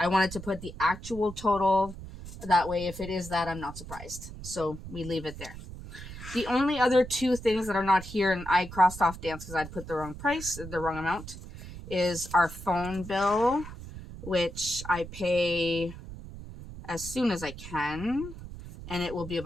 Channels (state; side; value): noise; right; rumble, 12 dB below the sound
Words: wanted to put the actual total. That way, if it is that, I'm not surprised. So we leave it there. The only other 2 things that are not here, and I crossed off dance because I'd put the wrong price, the wrong amount, is our phone bill, which I pay as soon as I can, and it will be